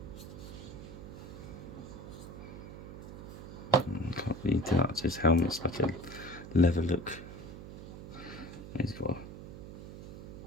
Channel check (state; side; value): noise; right; hum, 11 dB below the sound